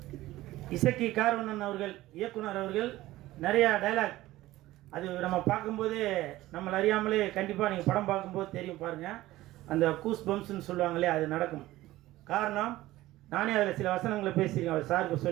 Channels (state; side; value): quieter; left; 16.7 dB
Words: இசக்கி கார்வண்ணன் அவர்கள், இயக்குனர் அவர்கள் நிறைய டைலாக், அது நம்ம பார்க்கும்போது நம்மளை அறியாமலே கண்டிப்பாக நீங்கள் படம் பார்க்கும்போது தெரியும் பாருங்க, அந்த கூஸ் பம்ப்ஸ்ன்னு சொல்லுவாங்களே, அது நடக்கும். காரணம், நானே அதில் சில வசனங்களை பேசியிருக்கேன், அவர் சாருக்கு